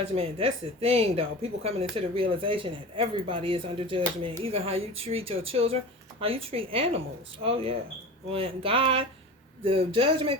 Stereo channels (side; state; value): both; normal; correlation 0.33